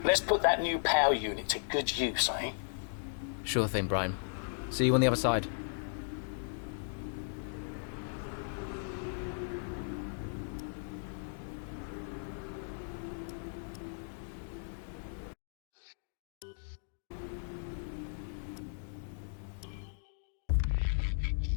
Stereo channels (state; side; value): silent; right; digital silence